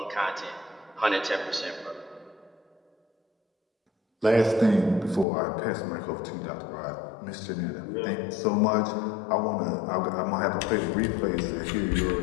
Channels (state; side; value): drops out; right; at 5.2 s